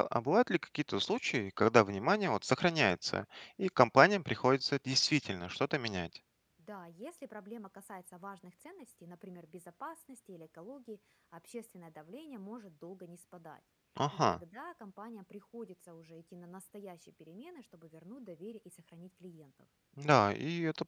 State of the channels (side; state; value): both; identical; correlation 1.00